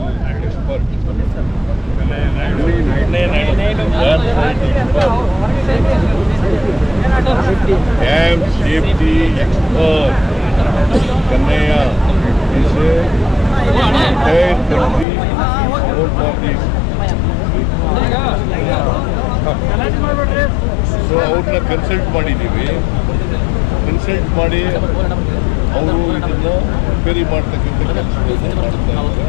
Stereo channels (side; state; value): right; drops out; at 15.1 s